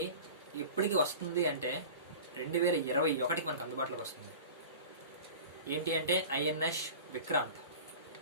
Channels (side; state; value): both; inverted; correlation -0.36